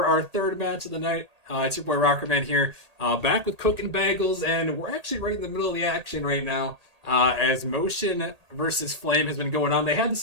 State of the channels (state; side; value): late; left; 1.8 ms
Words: our third match of the night. It's your boy Rockerman here, back with Cooking Bagels, and we're actually right in the middle of the action right now. As Motion versus Flame has been going on, they had to